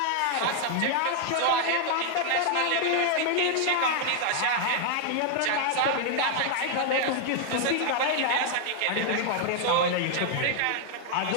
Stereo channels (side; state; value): both; different; correlation 0.00